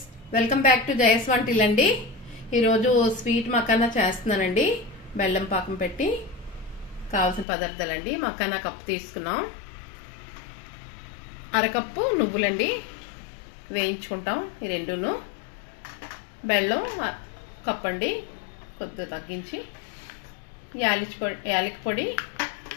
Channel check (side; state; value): right; drops out; at 7.5 s